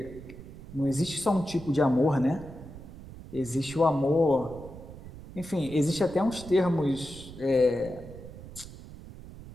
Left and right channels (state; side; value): noise; right; rumble, 15 dB below the sound